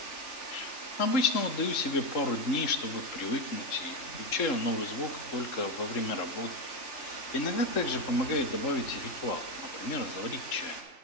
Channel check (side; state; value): right; late; 3.7 ms